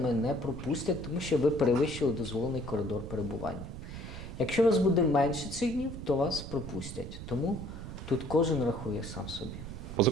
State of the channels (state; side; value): noise; right; rumble, 10 dB below the sound